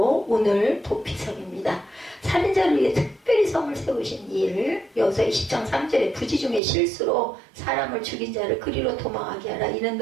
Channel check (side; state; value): left; drops out; at 6.6 s